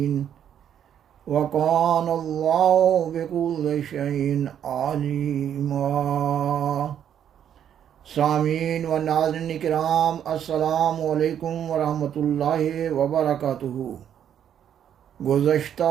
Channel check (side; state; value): left; quieter; 9.5 dB